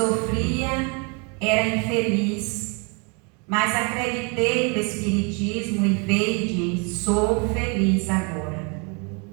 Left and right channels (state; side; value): quieter; left; 33.3 dB